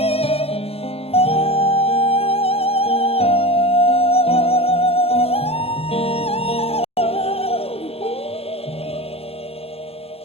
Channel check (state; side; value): late; right; 0.29 ms